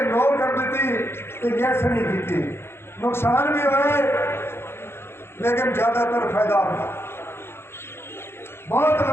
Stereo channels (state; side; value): late; right; 0.12 ms